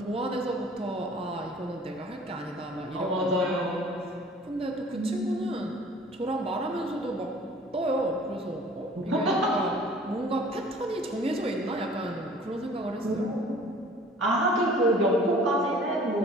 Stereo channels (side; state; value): both; normal; correlation 0.50